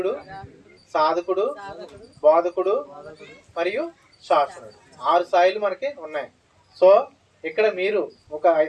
సాధకుడు, బోధకుడు మరియు శాసనుడు, 6 స్థాయిలు మనకి ఉన్నాయి. సో ఇక్కడ మీరు ఒక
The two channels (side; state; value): both; identical; correlation 1.00